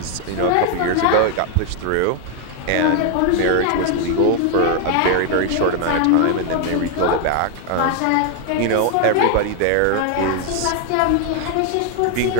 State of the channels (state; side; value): different; both; correlation 0.01